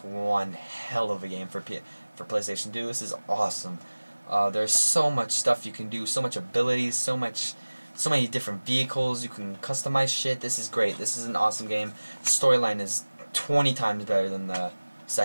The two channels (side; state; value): both; inverted; correlation -1.00